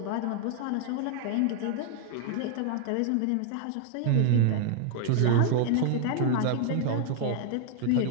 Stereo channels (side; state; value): both; different; correlation 0.00